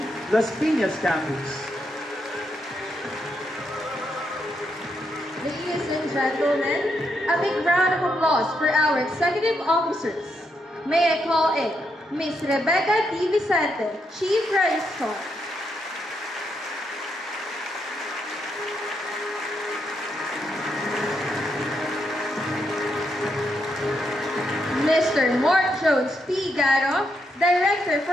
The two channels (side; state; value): both; normal; correlation 0.80